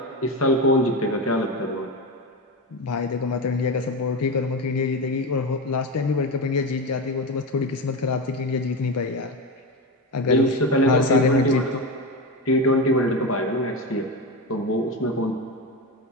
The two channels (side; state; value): both; normal; correlation 0.18